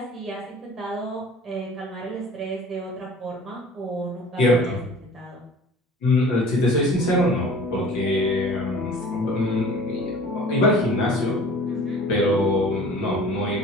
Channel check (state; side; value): normal; both; correlation 0.45